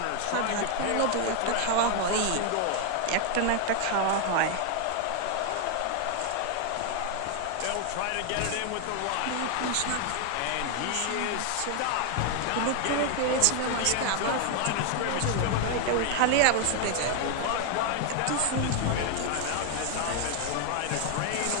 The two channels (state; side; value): different; both; correlation 0.00